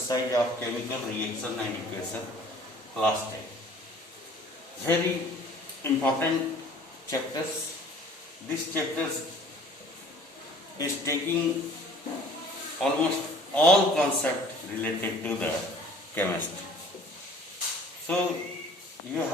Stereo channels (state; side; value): normal; both; correlation 0.50